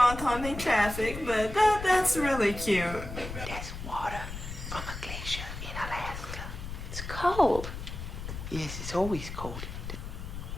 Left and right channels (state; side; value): noise; left; rumble, 8 dB below the sound